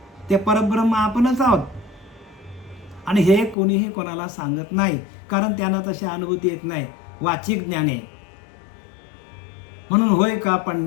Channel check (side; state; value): right; drops out; at 3.6 s